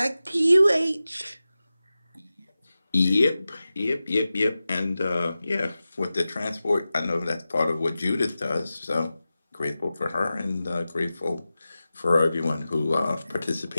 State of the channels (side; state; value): both; inverted; correlation -0.94